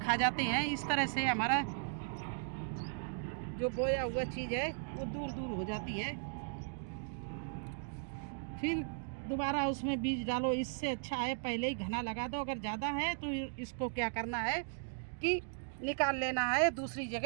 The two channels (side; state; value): left; silent; digital silence